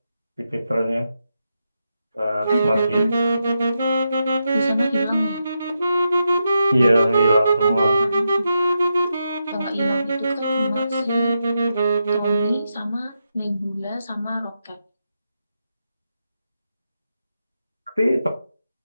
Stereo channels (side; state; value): both; inverted; correlation -0.85